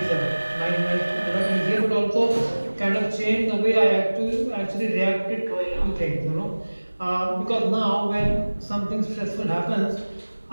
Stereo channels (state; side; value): inverted; both; correlation -1.00